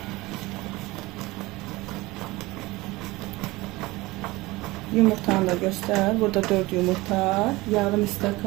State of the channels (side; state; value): left; quieter; 20.8 dB